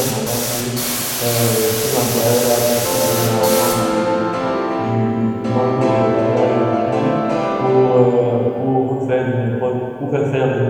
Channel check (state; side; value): identical; both; correlation 1.00